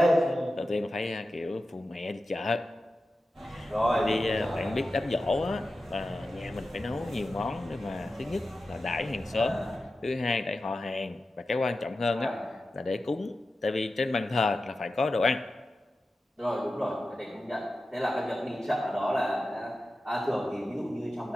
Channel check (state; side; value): normal; both; correlation 0.93